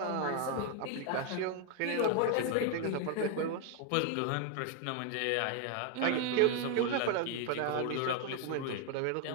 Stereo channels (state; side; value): different; both; correlation 0.00